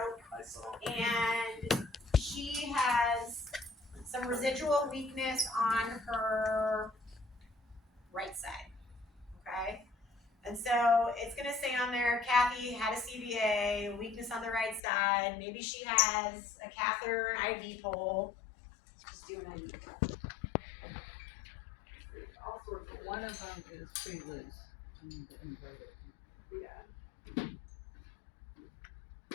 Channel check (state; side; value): drops out; right; at 14.8 s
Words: and she has some residual weakness on her right side, okay? And so it's gonna say on there, Kathy had a CVA, weakness on the right side, maybe she has a catheter, an IV pole. Let's just do an IV pole. All sorts of One of them is pretty loose. I need to invert it. yeah.